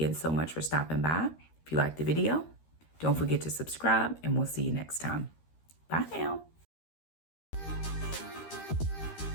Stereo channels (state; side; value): late; right; 13 ms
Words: so much for stopping by. If you liked the video, don't forget to subscribe, and we'll see you next time. Bye now.